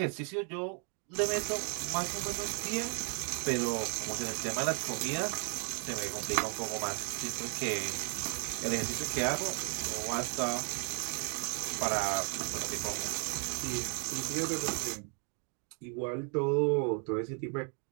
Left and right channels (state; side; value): quieter; left; 39.5 dB